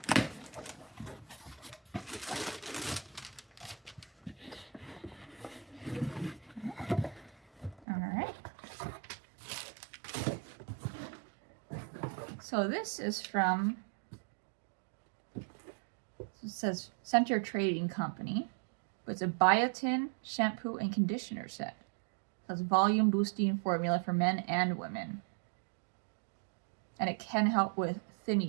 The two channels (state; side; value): drops out; left; at 7.9 s